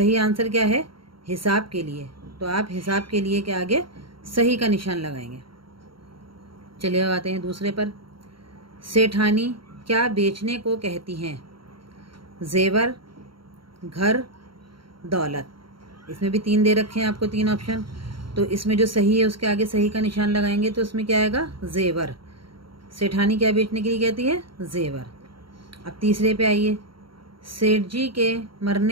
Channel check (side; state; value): left; late; 0.73 ms